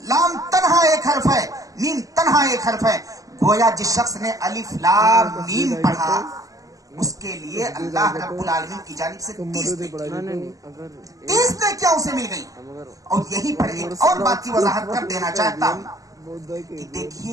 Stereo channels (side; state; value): left; late; 0.17 ms